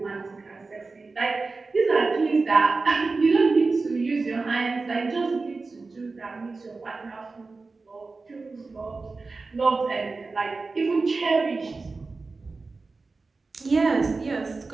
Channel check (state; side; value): quieter; left; 3.9 dB